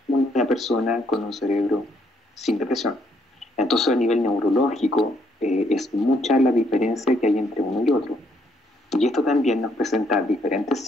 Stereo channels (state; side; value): normal; both; correlation 0.71